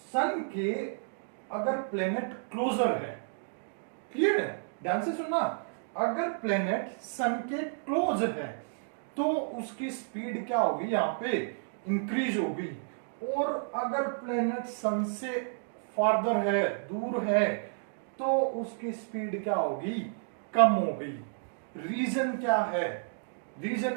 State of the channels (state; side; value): silent; left; digital silence